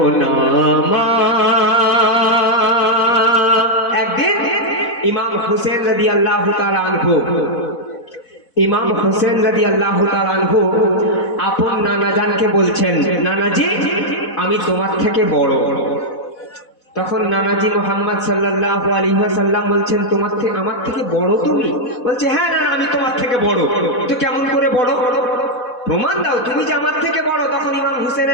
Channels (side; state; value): right; late; 4.1 ms